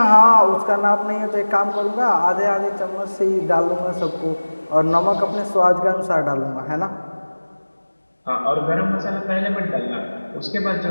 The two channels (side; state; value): both; inverted; correlation -1.00